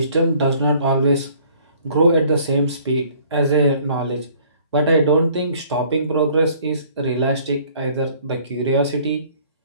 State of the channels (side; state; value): both; inverted; correlation -0.57